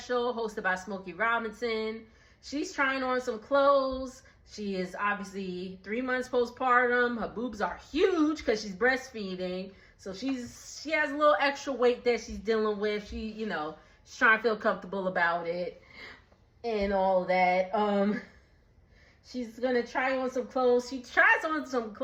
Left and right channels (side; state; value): both; identical; correlation 1.00